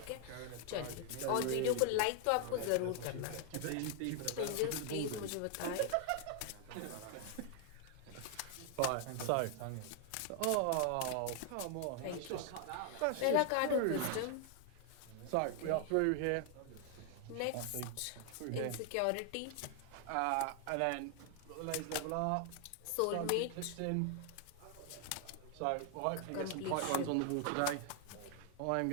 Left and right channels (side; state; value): both; different; correlation 0.00